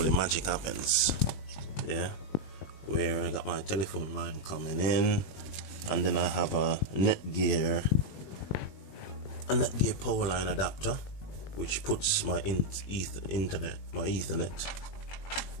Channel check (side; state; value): right; late; 21 ms